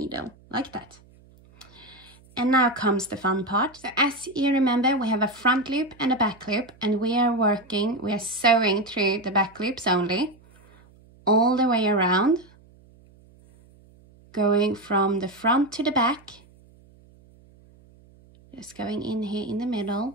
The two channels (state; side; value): noise; right; hum, 27 dB below the sound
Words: like that. And now comes the fun part. So as you remember, we have a front loop and a back loop, and we are sewing through the back loops only, all the way around, going from the front to the back, just going in here in the